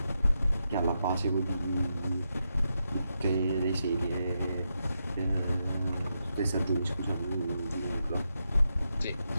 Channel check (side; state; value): both; inverted; correlation -0.85